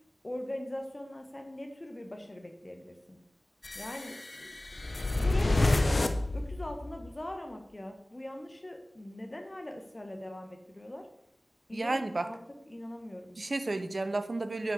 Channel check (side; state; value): both; normal; correlation 0.97